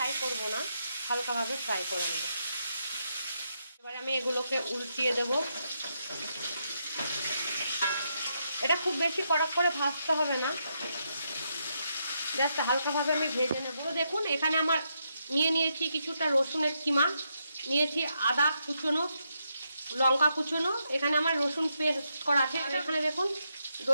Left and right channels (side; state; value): both; inverted; correlation -0.81